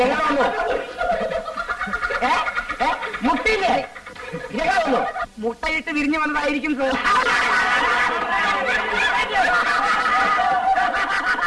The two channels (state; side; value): identical; both; correlation 1.00